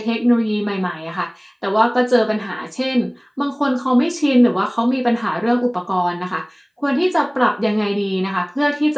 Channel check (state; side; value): identical; both; correlation 1.00